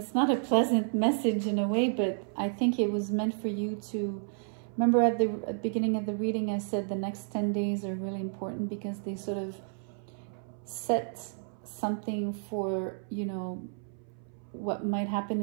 not a pleasant message in a way, but I think it was meant for you to remember. At the beginning of the reading, I said the next 10 days are really important because they sort of set something for, you know, what might happen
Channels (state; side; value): silent; left; 57 dB below the other